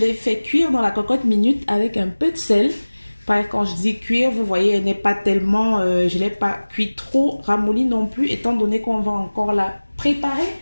fait cuire dans la cocotte minute avec un peu de sel. Quand je dis cuire, vous voyez, elle n'est pas tellement... je ne l'ai pas cuit trop ramolli non plus, étant donné qu'on va encore la préparer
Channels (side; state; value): both; inverted; correlation -1.00